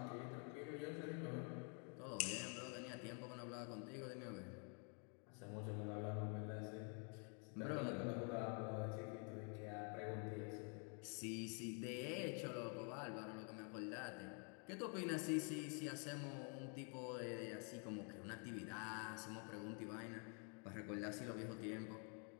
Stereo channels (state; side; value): quieter; right; 39.4 dB